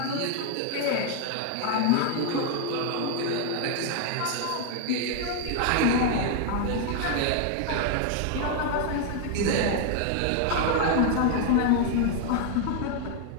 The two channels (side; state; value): both; different; correlation 0.00